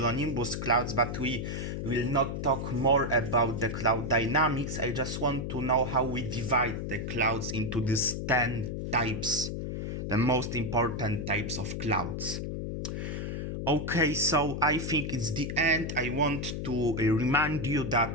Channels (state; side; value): noise; left; hum, 4 dB below the sound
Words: clouds. But we will not talk more about the cloud dynamics. I just want to know how we divide the clouds into these 10 types, the most important types of clouds. Okay, so I think it's the end. I want to remind you